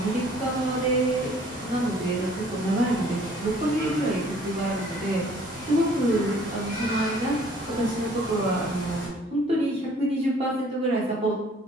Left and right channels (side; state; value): both; normal; correlation 0.56